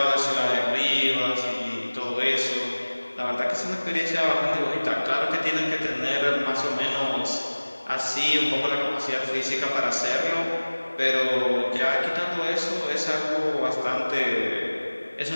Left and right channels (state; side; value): inverted; both; correlation -1.00